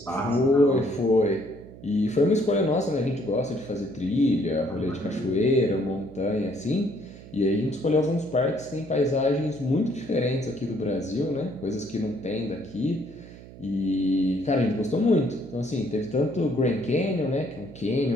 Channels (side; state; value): right; noise; hum, 17 dB below the sound